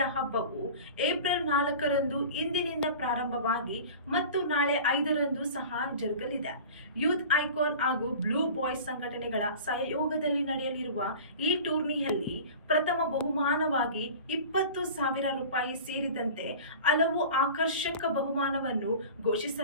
ಹಬ್ಬವು ಏಪ್ರಿಲ್ 4ರಂದು ಇಂದಿನಿಂದ ಪ್ರಾರಂಭವಾಗಿ ಮತ್ತು ನಾಳೆ 5ರಂದು ಸಹ ಜರುಗಲಿದೆ. ಯೂತ್ ಐಕಾನ್ ಹಾಗೂ ಬ್ಲೂ ಬಾಯ್ಸ್ ಸಂಘಟನೆಗಳ ಸಹಯೋಗದಲ್ಲಿ ನಡೆಯಲಿರುವ ಈ ಟೂರ್ನಿಯಲ್ಲಿ ಪ್ರಥಮ ಬಹುಮಾನವಾಗಿ 20,000 ರೂಪಾಯಿ ಸೇರಿದಂತೆ ಹಲವು ಆಕರ್ಷಕ ಬಹುಮಾನವನ್ನು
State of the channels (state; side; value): inverted; both; correlation -0.38